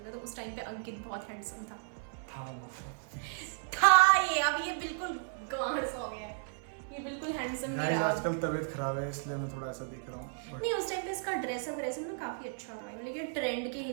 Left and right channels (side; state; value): left; silent; 55 dB below the other